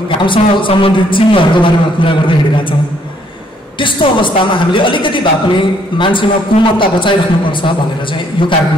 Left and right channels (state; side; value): normal; both; correlation 0.67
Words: घामसँग सम्बन्धित चिन्हहरूको बारेमा कुरा गर्दै हिँडिरहेका छौँ। त्यस्तो अवस्थामा हामीले अलिकति भए पनि मान्छेमा कोमलता बचाइराख्नुपर्छ भनेर चाहिँ यो